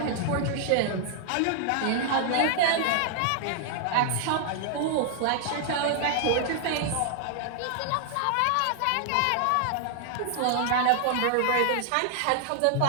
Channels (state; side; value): different; both; correlation 0.00